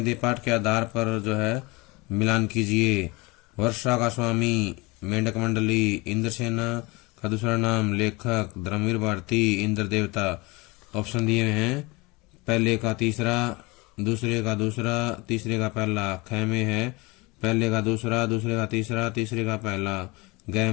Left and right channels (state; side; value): quieter; right; 24.9 dB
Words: पाठ के आधार पर जो है मिलान कीजिए। वर्षा का स्वामी मेंढक मंडली, इंद्रसेना का दूसरा नाम लेखक, धर्मवीर भारती, इंद्र देवता। ऑप्शन दिए हैं, पहले का तीसरा, दूसरे का दूसरा, तीसरे का पहला। ख में है पहले का दूसरा, दूसरे का तीसरा, तीसरे का पहला। ग